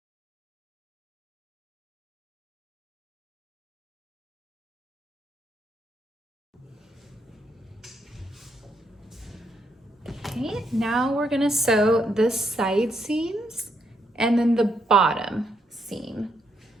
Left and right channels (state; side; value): normal; both; correlation 0.76